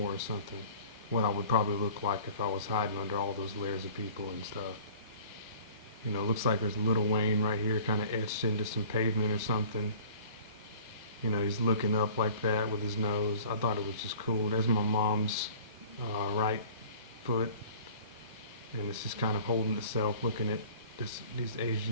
or something. What I would probably look like if I was hiding under all those layers of people and stuff. You know, it looks like there's Lil Wayne right here, kind of etched into some pavement or something. You know, he's looking up like that with his nose. I thought it was just cool. There's my mom's right foot, and it's just kind of holding itself, looking at these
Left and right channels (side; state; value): both; inverted; correlation -0.46